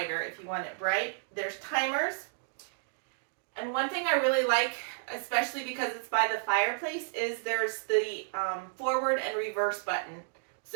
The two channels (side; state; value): left; silent; digital silence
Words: if you want it bright. There's timers. And one thing I really like, especially because it's by the fireplace, is there's the forward and reverse button.